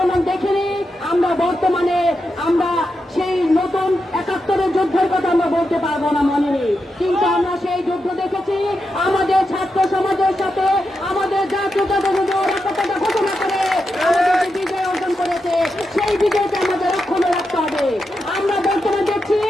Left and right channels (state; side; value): normal; both; correlation 0.87